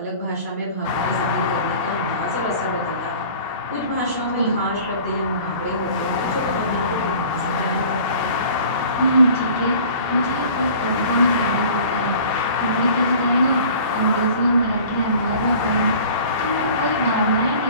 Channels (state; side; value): inverted; both; correlation -0.46